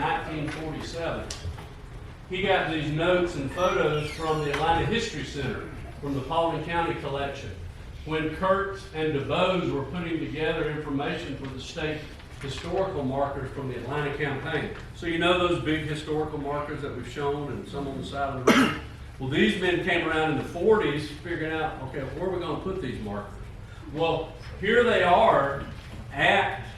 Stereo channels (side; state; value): both; identical; correlation 1.00